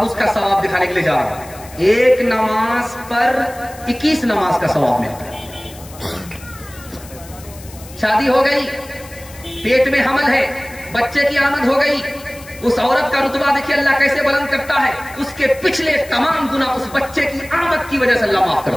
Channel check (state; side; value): noise; left; hiss, 19 dB below the sound